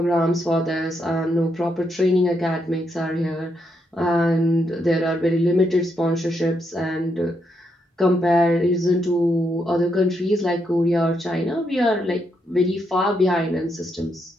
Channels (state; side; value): normal; both; correlation 0.79